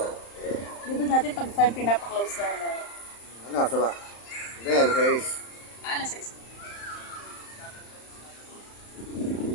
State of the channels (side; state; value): right; late; 35 ms